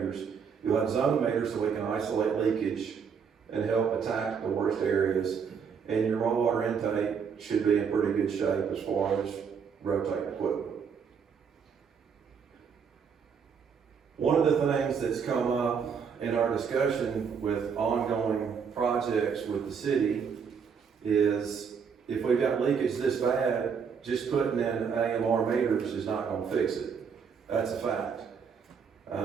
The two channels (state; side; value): quieter; left; 6.5 dB